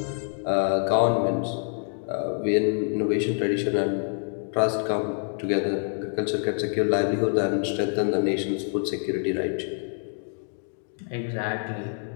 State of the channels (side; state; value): right; silent; 61 dB below the other